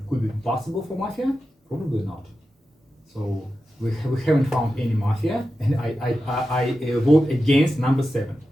Could it be possible for mafia? Probably not. So we haven't found any mafia, and I vote against number 7.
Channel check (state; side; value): normal; both; correlation 0.91